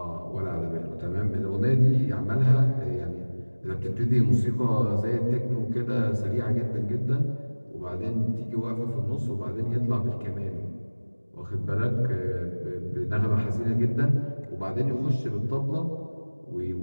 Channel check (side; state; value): both; inverted; correlation -1.00